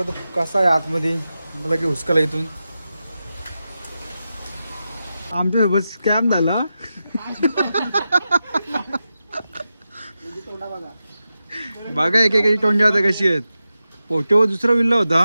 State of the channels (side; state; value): both; inverted; correlation -0.91